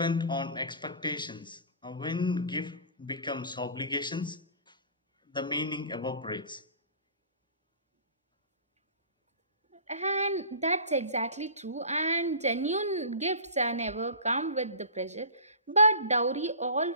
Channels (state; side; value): inverted; both; correlation -0.38